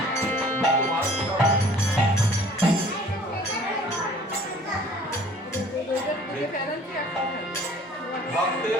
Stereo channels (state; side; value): normal; both; correlation 0.51